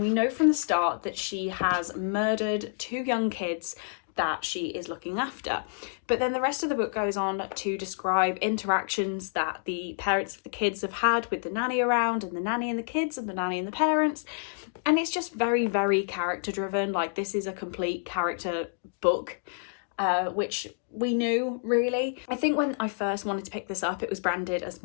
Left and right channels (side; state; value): right; silent; digital silence